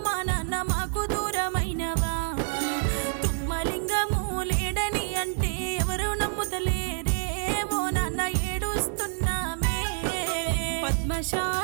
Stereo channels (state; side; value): silent; left; digital silence